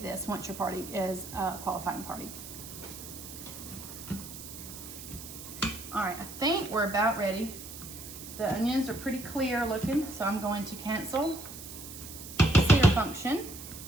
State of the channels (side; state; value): right; noise; hiss, 12 dB below the sound